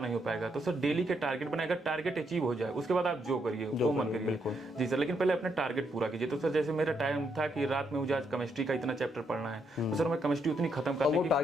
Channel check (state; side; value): normal; both; correlation 0.77